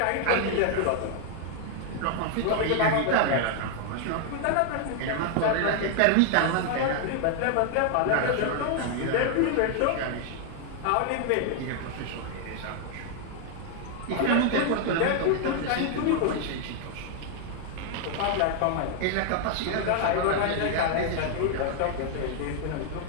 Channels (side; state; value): both; different; correlation 0.00